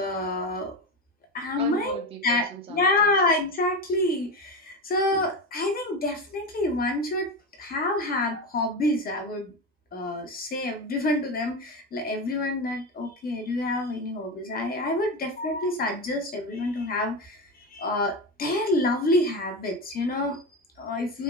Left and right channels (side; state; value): both; normal; correlation 0.19